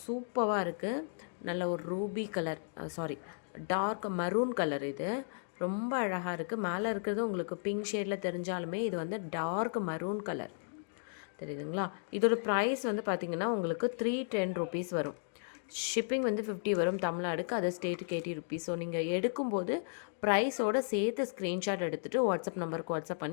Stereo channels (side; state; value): right; silent; digital silence